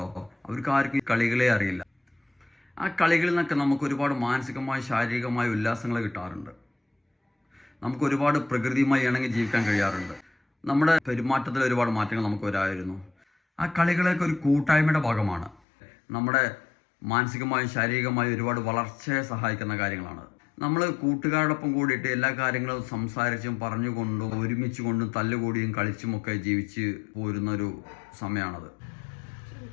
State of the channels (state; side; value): drops out; right; at 15.6 s